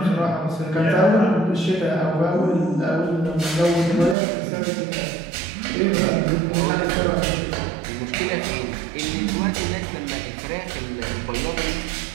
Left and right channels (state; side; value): drops out; left; at 4.2 s